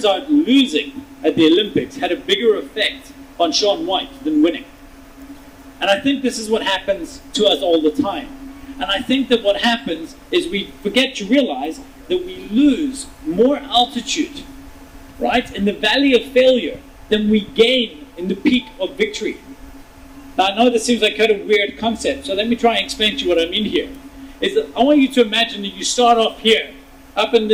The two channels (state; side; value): identical; both; correlation 1.00